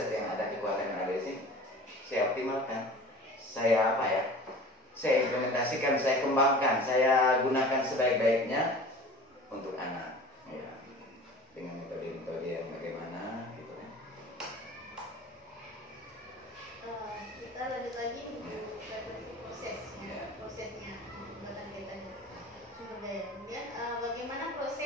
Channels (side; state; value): both; normal; correlation 0.40